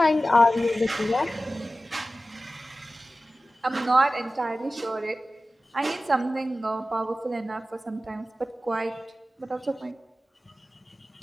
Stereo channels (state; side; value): normal; both; correlation 0.95